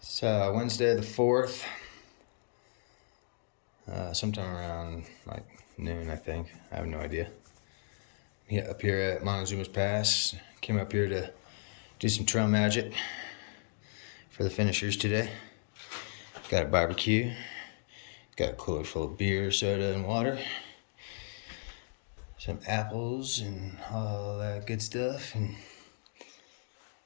it's Wednesday the 4th, sometime around like noon, I think. I have no idea. Up here at Montezuma's Pass. Came up here to do some trail magic for the finishers today. Got a barbecue, got a cooler full of beer, soda, and water. Some apples and all that good stuff, and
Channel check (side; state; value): right; silent; digital silence